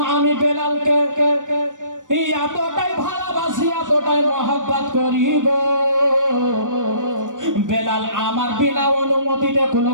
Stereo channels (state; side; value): late; left; 0.87 ms